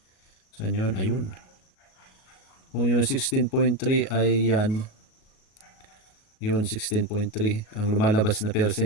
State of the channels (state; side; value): late; right; 37 ms